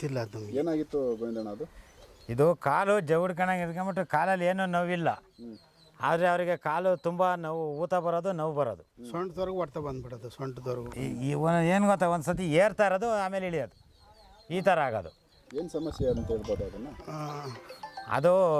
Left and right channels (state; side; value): identical; both; correlation 1.00